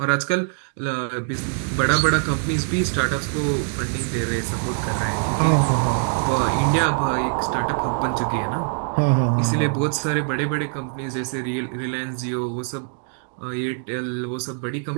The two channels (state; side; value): silent; left; 63 dB below the other